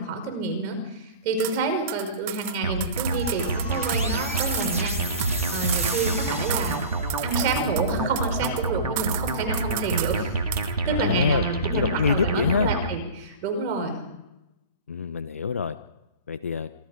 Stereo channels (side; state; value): both; inverted; correlation -0.34